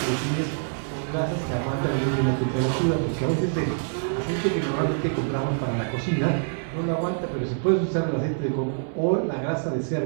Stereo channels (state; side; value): silent; left; 61 dB below the other